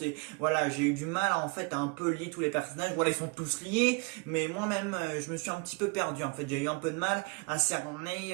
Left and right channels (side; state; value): left; quieter; 31.4 dB